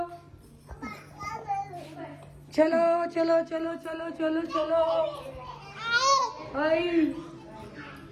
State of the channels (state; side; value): identical; both; correlation 1.00